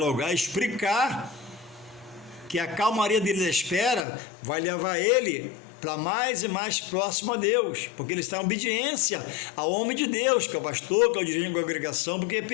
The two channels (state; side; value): drops out; right; at 4.0 s